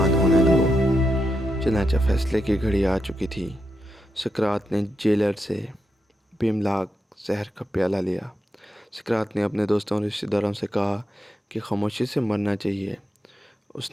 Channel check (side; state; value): both; normal; correlation 0.85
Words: چنانچہ فیصلے کی گھڑی آ چکی تھی۔ سقراط نے جیلر سے بیملاک زہر کا پیالہ لیا۔ سقراط نے اپنے دوستوں اور رشتہ داروں سے کہا کہ خاموشی سے مرنا چاہیے۔